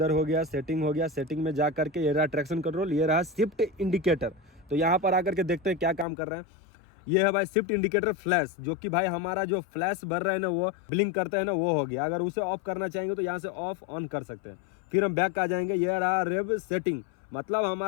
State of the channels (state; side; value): drops out; right; at 6.1 s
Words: हो गया, सेटिंग हो गया। सेटिंग में जा करके ये रहा ट्रैक्शन कंट्रोल, ये रहा शिफ्ट इंडिकेटर। तो यहाँ पर आकर के देखते हैं क्या काम कर रहा है। ये है भाई शिफ्ट इंडिकेटर फ्लैश, जो कि भाई हमारा जो फ्लैश भर रहा है ना, वो ब्लिंक करता है ना, वो हो गया। अगर उसे ऑफ करना चाहेंगे तो यहाँ से ऑफ ऑन कर सकते हैं। फिर हम बैक आ जाएंगे। ये रहा रेव सेटिंग, मतलब